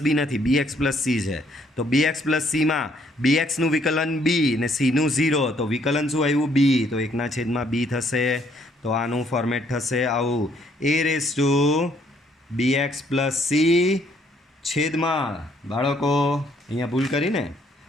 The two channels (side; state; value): both; normal; correlation 0.67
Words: બી નથી, bx પ્લસ સી છે. તો bx પ્લસ સીમાં bxનું વિકલન બી ને સીનું 0, તો વિકલન શું આવ્યું? બી. તો 1/b થશે. તો આનું ફોર્મેટ થશે આવું a⁻bx પ્લસ સી છેદમાં બાળકો અહીંયા ભૂલ કરીને આ